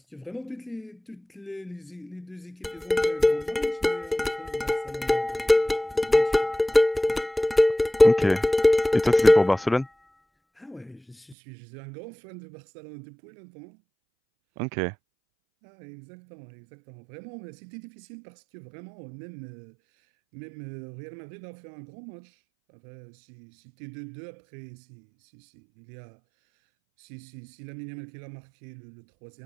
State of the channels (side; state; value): left; drops out; at 11.4 s